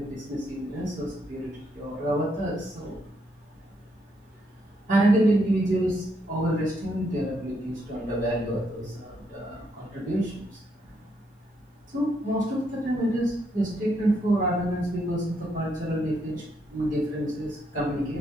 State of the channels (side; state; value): both; normal; correlation 0.76